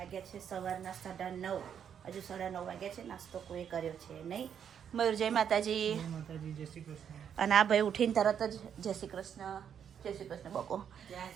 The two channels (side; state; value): left; quieter; 8.3 dB